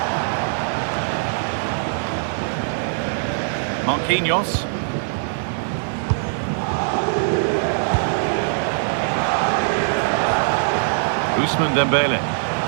Marquinhos. Ousmane Dembele.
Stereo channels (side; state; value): left; silent; digital silence